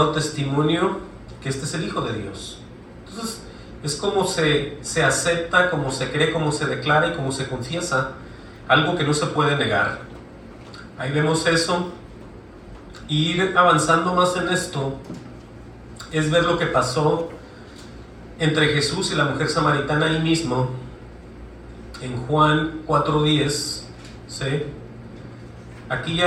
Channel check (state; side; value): identical; both; correlation 1.00